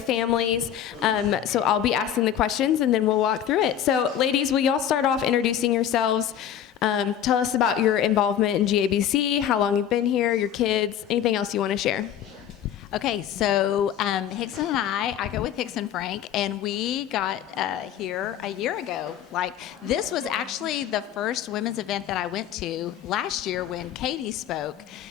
So I'll be asking the questions and then we'll walk through it. So ladies, will y'all start off introducing yourselves? Tell us about your involvement in GABC, how long you've been here, your kids, anything else you want to share. Okay, so Hickson and I go with Hickson Frank, and we got here a year ago. This was actually the first women's event that I went to last year when Katie spoke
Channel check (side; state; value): right; quieter; 9.9 dB